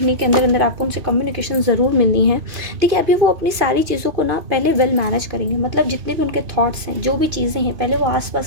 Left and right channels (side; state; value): left; late; 2.5 ms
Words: के अंदर अंदर आपको उनसे कम्युनिकेशन ज़रूर मिलनी है। देखिए, अभी वो अपनी सारी चीज़ों को ना पहले वेल मैनेज करेंगे, मतलब जितने भी उनके थॉट्स हैं, जो भी चीज़ें हैं, पहले वो